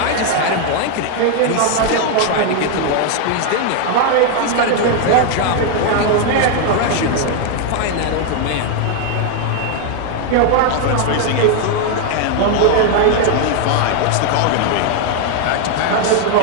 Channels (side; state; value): both; different; correlation 0.01